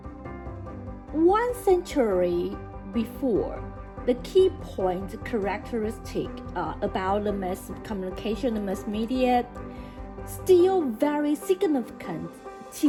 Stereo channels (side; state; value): both; identical; correlation 1.00